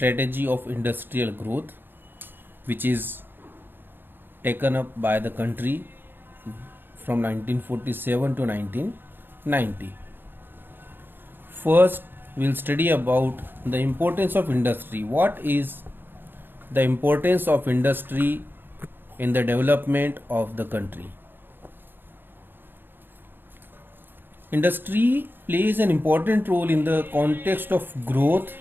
of industrial growth, which is taken up by the country from 1947 to 1990. First, we'll study about the importance of industry. What is the importance of industry in the development of the country? Industry plays an important role in the context of growth.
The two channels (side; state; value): left; late; 0.098 ms